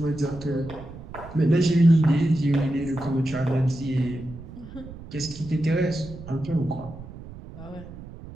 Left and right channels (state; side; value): noise; right; rumble, 14 dB below the sound